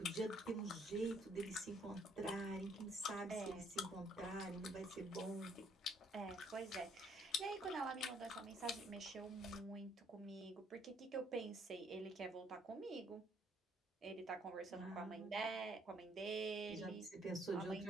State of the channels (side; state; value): both; normal; correlation 0.65